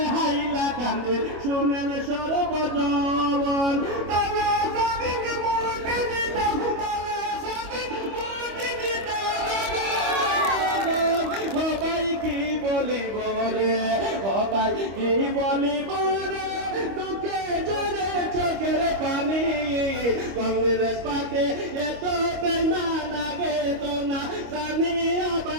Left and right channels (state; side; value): late; left; 25 ms